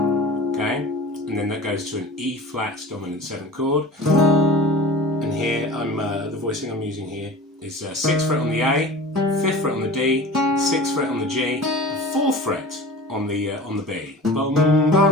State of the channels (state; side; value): normal; both; correlation 0.37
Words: and then that goes to an E flat dominant 7 chord. And here the voicing I'm using here is 6th fret on the A, 5th fret on the D, 6th fret on the G, and 4th fret on the B. Bum,